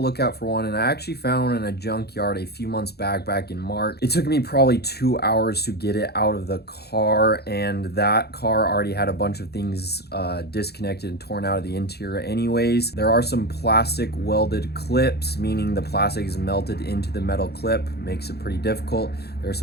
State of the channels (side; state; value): right; late; 0.47 ms